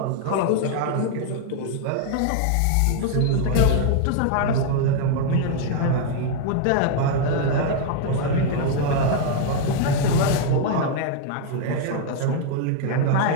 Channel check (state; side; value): different; both; correlation 0.00